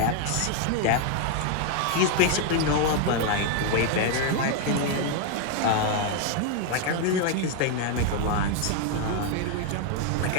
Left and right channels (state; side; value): different; both; correlation 0.00